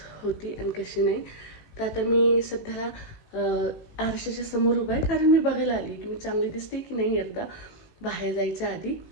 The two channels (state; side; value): late; right; 18 ms